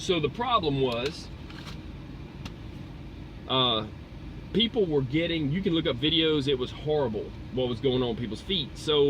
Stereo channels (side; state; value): both; identical; correlation 1.00